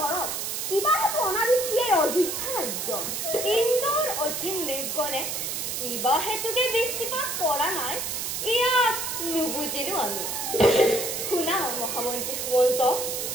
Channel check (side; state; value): right; noise; hiss, 3 dB below the sound